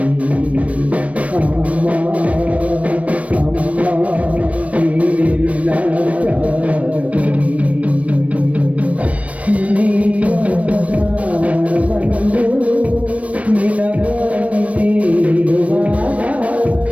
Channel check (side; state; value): left; late; 0.065 ms